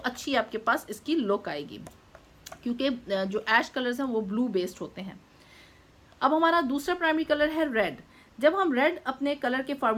आपके पास इसकी लुक आएगी, क्योंकि जो ऐश कलर्स हैं वो ब्लू बेस्ड होते हैं। अब हमारा दूसरा प्राइमरी कलर है रेड। जब हम रेड अपने कलर के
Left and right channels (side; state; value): both; identical; correlation 1.00